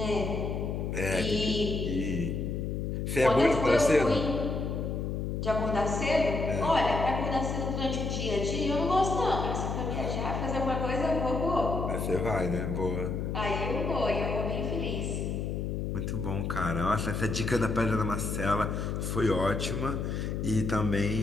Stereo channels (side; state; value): left; noise; hum, 2 dB below the sound